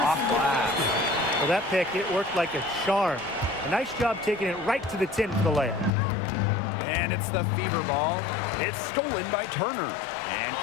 glass. Well, that pick, it worked like a charm. A nice job taking it right to the tin for the layup. And it's the fever ball. It's stolen by Turner. And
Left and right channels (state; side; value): drops out; right; at 5.9 s